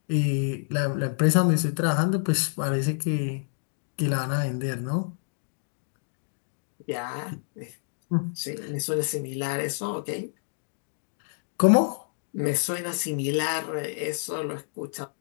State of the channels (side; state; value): right; silent; 59 dB below the other